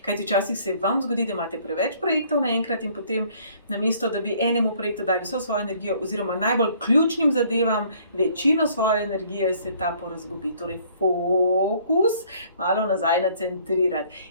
Kajti včasih se vam zgodi, da imate preveč projektov naenkrat in potem namesto, da bi enemu projektu dali vso svojo energijo oziroma najbolj ključnim zadevam večino svoje energije, se ta porazgubi. Torej fokus malo nazaj nacentrirati.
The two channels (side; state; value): both; inverted; correlation -0.59